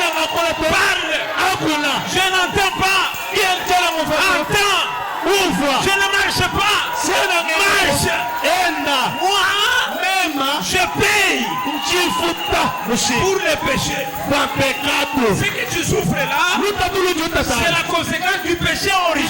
Parle. Je n'entends pas. Entends. Ouvre. Je ne marche pas. Marche. Moi, je paye pour le péché. Ce que tu souffres là, c'est la conséquence du péché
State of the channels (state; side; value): identical; both; correlation 1.00